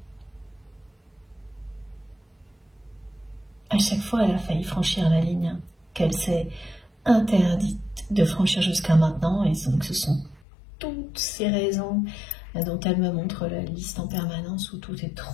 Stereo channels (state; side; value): drops out; right; at 10.5 s